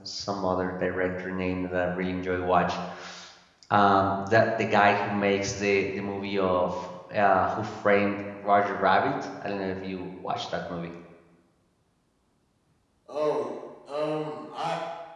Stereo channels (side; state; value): both; identical; correlation 1.00